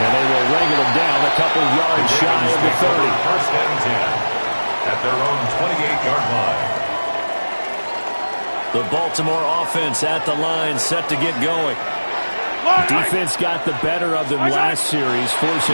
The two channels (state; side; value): inverted; both; correlation -1.00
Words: they will wrangle them down a couple yards shy of the 30. 1st and 10 at their own 28-yard line. The Baltimore offense at the line, set to get going. Defense got the better of them last series,